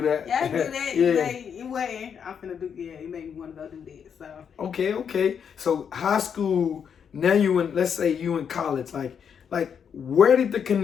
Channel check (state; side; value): quieter; right; 7.4 dB